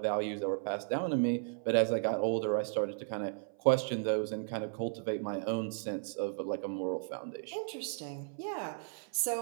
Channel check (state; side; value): silent; left; 55 dB below the other